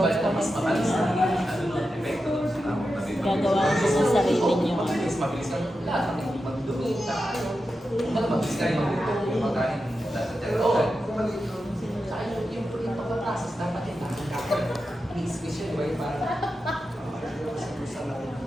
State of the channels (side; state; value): both; normal; correlation 0.90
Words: ko gagawa ko sa sarili niyo. Mabilis lang lahat ng magdumi. Mabilis kayo yung pagkain. Oo. Yung pagkaprocess dapat yung lahat.